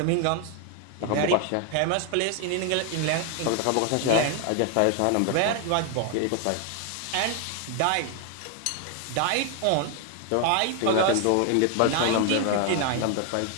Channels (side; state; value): both; different; correlation 0.01